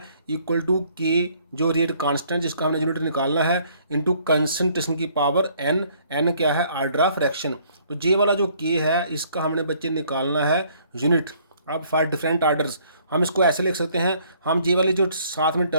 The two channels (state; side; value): inverted; both; correlation -0.62